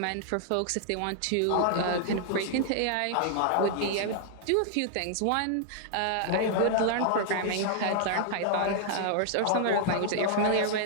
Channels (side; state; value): both; different; correlation -0.01